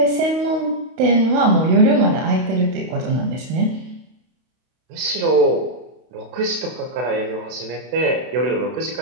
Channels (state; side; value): late; left; 32 ms